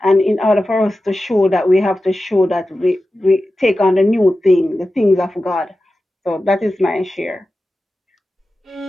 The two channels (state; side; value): normal; both; correlation 0.93